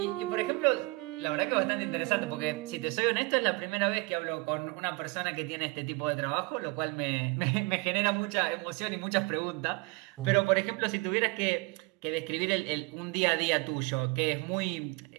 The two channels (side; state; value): left; quieter; 26.7 dB